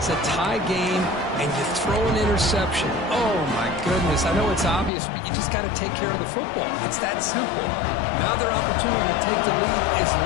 a tie game, and you throw an interception. Oh, my goodness. I know it's obvious, but you just got to take care of the football. It's that simple. Now their opportunity to take the lead is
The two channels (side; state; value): right; drops out; at 4.9 s